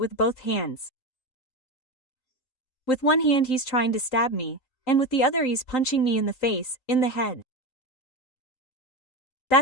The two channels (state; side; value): late; right; 3.9 ms